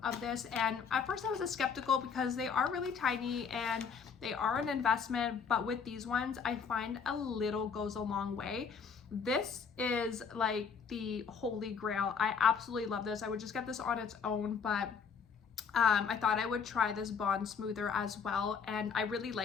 this, and at first I was skeptical because they are really tiny and they are an investment, but with these ones I find a little goes a long way. This is like the holy grail. I absolutely love this. I would just get this on its own, but I thought I would try this bond smoother as well, and I really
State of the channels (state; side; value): quieter; right; 6.2 dB